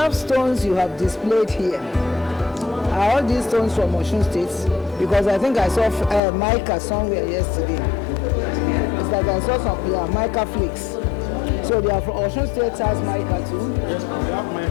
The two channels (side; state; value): right; drops out; at 6.2 s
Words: stones you have displayed here. Are all these stones from Osun State? Because I think I saw mica somewhere yesterday. It's like I saw some mica flakes. So they are from Osun State has mica too? Yes, we have